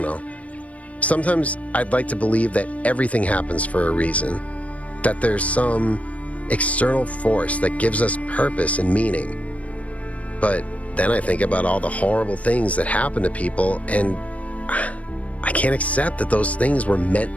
know. Sometimes I'd like to believe that everything happens for a reason, that there's some external force that gives us purpose and meaning. But then I think about all the horrible things that happen to people, and I can't accept that those things were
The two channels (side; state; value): right; late; 0.067 ms